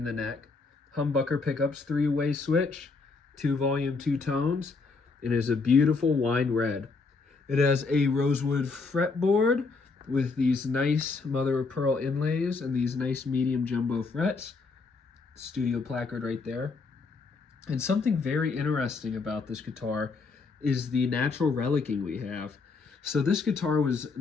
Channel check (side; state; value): right; quieter; 4.3 dB